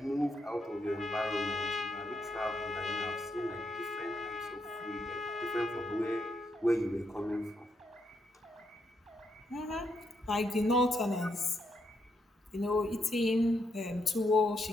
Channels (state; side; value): normal; both; correlation 0.78